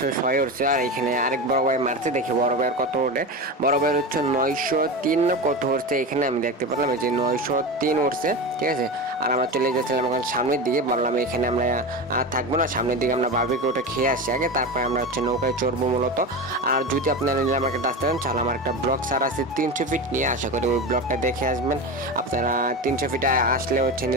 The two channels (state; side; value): normal; both; correlation 0.23